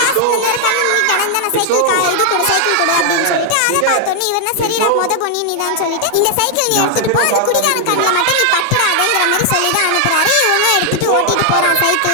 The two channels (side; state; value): both; different; correlation 0.00